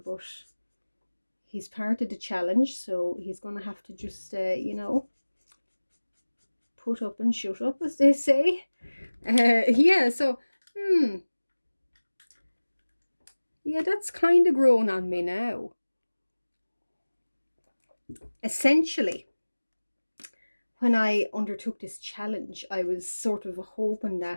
he's part of the challenge, so he's going to have to just, you know, put up and shut up, as they say. Yeah, so, yeah, that's kind of grown on me now. Essentially, when I undertook this challenge, I was sort of hoping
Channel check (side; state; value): both; inverted; correlation -1.00